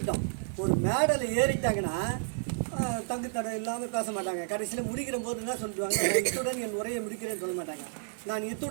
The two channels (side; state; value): left; silent; digital silence